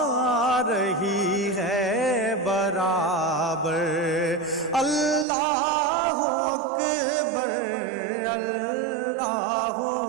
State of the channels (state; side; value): drops out; left; at 5.2 s